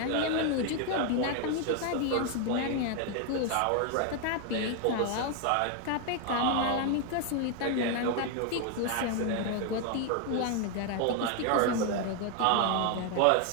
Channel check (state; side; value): different; both; correlation 0.01